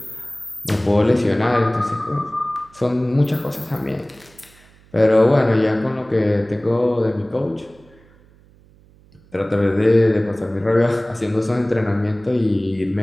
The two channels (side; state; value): right; noise; hum, 28 dB below the sound